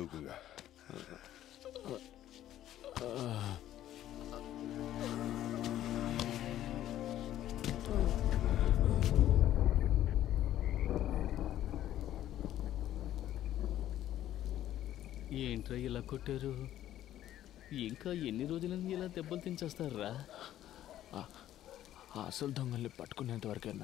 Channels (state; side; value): quieter; right; 12.5 dB